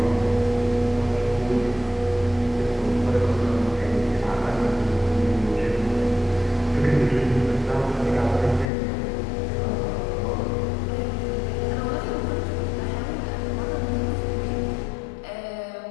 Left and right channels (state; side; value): drops out; right; at 8.7 s